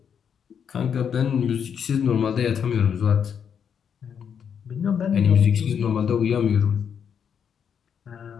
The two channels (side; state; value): right; quieter; 7.6 dB